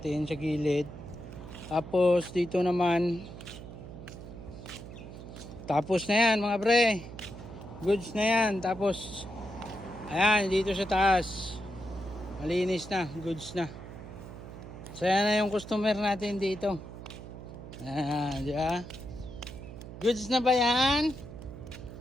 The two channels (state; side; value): noise; right; hum, 13 dB below the sound